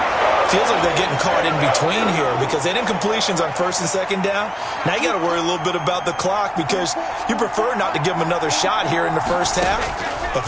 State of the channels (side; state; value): both; identical; correlation 1.00